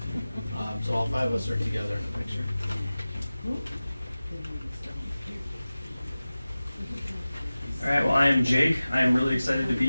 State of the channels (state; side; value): inverted; both; correlation -0.97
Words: So all 5 of us are together in the picture. All right, well, I am Jake. I am really excited to